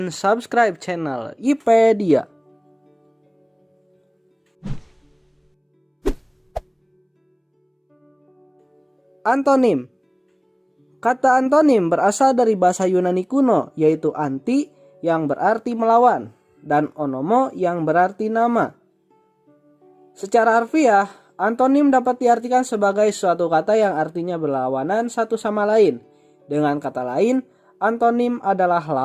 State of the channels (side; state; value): both; identical; correlation 1.00